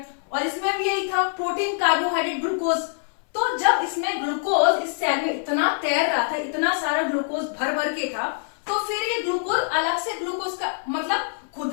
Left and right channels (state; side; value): silent; right; 62 dB below the other